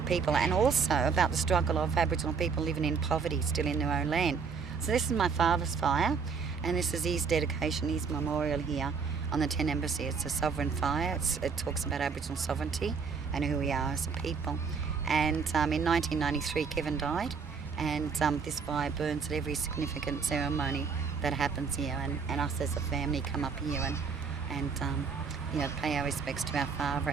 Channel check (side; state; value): left; quieter; 5.6 dB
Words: people, and also about the struggle of Aboriginal people living in poverty still in their own land. So this is my father's fire, and this is his dedication, his memorial here on the Tent Embassy. It's a sovereign fire. It talks about Aboriginal sovereignty and who we are as a people. And in 1993 Kevin died, and this fire burns at every significant ceremony that happens here, and us as a family come up here and pay our respects to our father